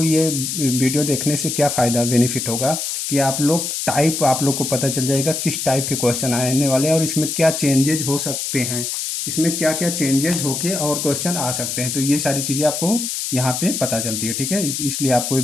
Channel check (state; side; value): noise; left; hiss, 3 dB below the sound